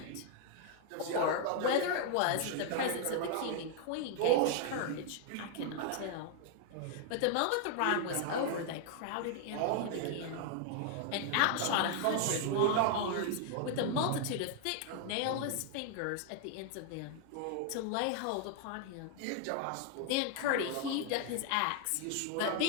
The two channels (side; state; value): both; different; correlation 0.00